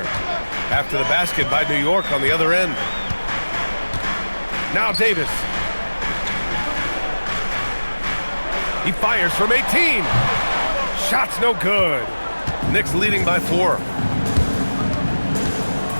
After the basket by New York on the other end. Now Davis. He fires from 18. Shot's no good. Knicks leading by 4.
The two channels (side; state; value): both; inverted; correlation -1.00